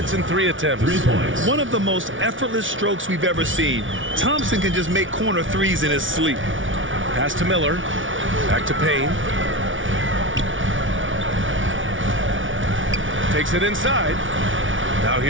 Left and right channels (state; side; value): late; left; 0.57 ms